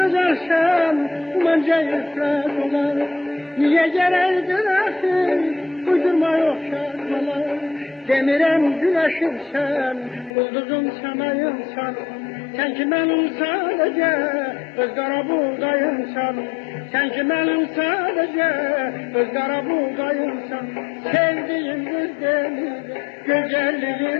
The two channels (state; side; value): drops out; right; at 10.3 s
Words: bence ifrat olar. Niye gereğidir ahir, uydurma yok şartmalar. Demirem güneşimsen, bulduzum semayımsan. Sen ki benim sadece, ızgara buğdayımsan. Sen ki benim sadece, ızgara buğdayımsan. Sevdiğim bir demir,